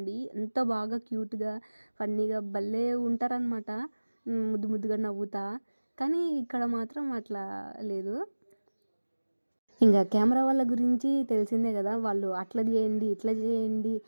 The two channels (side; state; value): both; inverted; correlation -1.00